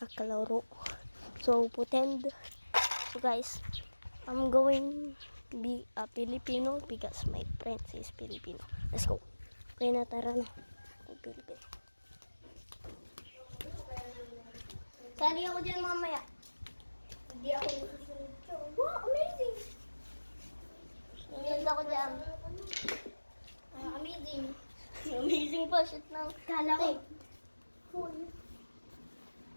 kalaro. So pretend. So guys, I'm going to be a Filipino because my friend is Filipino. Let's go. Kaya na, tara na. Filipino. Sali ako dyan mamaya. Hindi ako susunod. Wow, amazing! Sunod ako dyan. Amazing. Amazing pa. Shit na. Kala ko. Full.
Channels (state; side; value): inverted; both; correlation -1.00